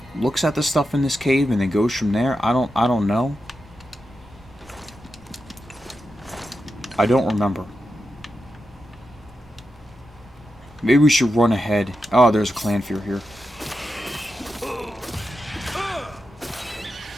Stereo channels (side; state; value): both; normal; correlation 0.89